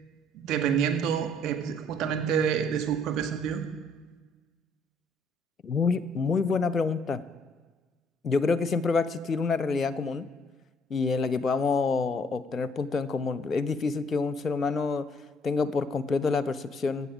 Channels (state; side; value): normal; both; correlation 0.64